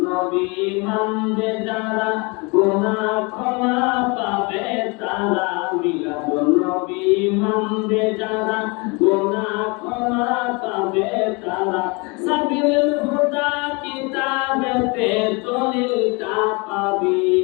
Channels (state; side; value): quieter; right; 29.0 dB